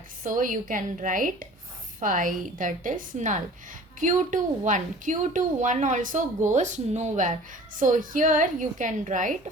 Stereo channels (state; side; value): normal; both; correlation 0.45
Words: So you can write 5, that is null. Q2 1. Q2 1 also goes nowhere. So here you can